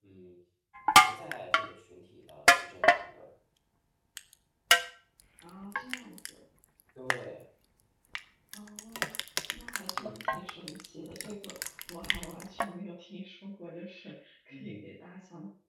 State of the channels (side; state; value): both; identical; correlation 1.00